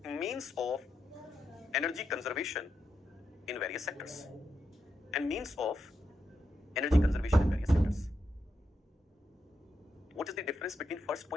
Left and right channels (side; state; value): both; normal; correlation 0.84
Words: means of energy conservation in various sectors. And means of energy conservation in various sectors. What is the difference between first